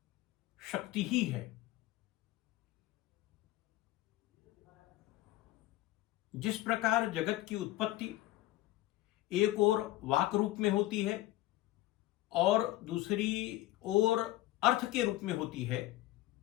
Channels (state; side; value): quieter; right; 16.5 dB